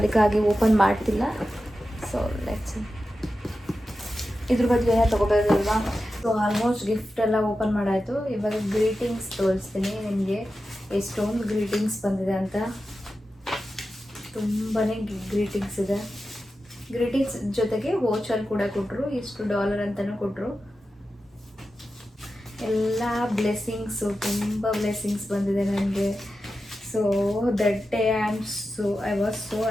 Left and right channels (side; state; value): both; normal; correlation 0.92